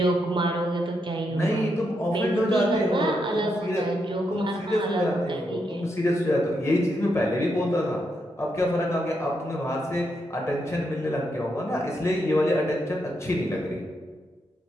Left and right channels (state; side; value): normal; both; correlation 0.81